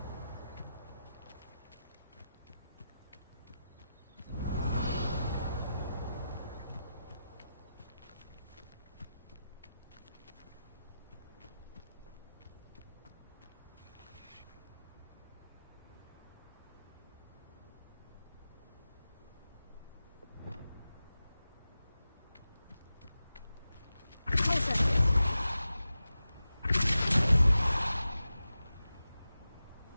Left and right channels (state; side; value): inverted; both; correlation -0.92